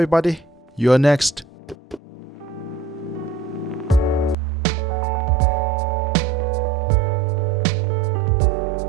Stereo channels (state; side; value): drops out; left; at 4.4 s